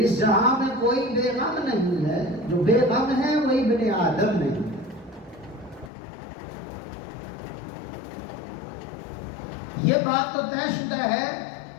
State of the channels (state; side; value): drops out; right; at 5.9 s